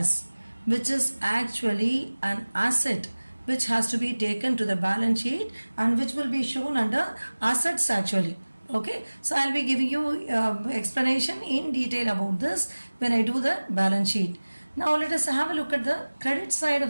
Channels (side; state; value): both; inverted; correlation -1.00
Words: which is actually an asset which has to be taken to the balance sheet and which will be shown under assets actually. Okay, so I'll be giving you explanation in detail about this when I do the balance sheet. Now let us have a look at the credit side